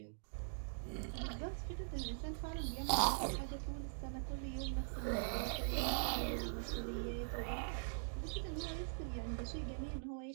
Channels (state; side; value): silent; left; digital silence